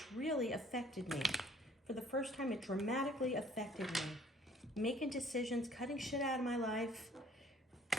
really affected me. For the first time, it dramatically affected me. Making decisions, cutting shit out of my life,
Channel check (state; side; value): normal; both; correlation 0.56